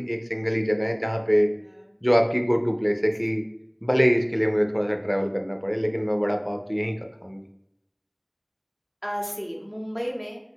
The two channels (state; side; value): identical; both; correlation 1.00